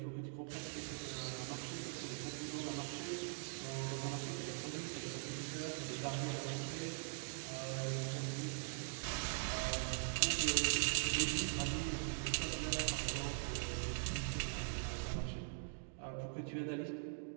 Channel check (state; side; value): silent; left; digital silence